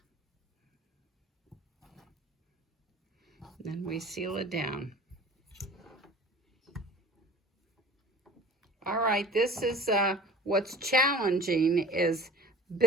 Then we seal it down. All right, this is what's challenging is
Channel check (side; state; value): both; normal; correlation 0.43